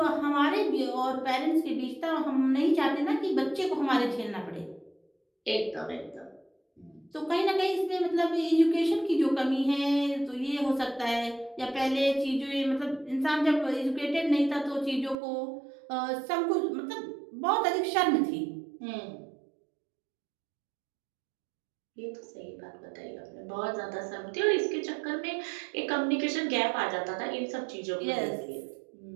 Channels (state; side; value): drops out; left; at 15.2 s